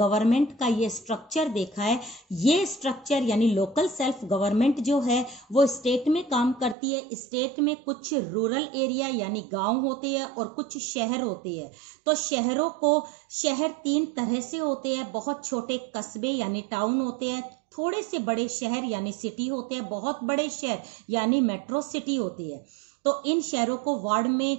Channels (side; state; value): left; drops out; at 6.8 s